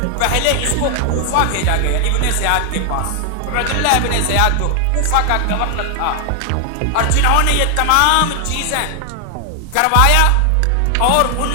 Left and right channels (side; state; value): both; different; correlation 0.00